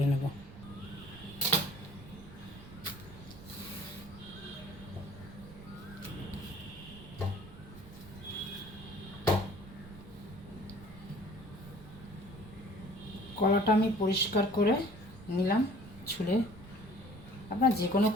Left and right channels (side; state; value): right; noise; rumble, 17 dB below the sound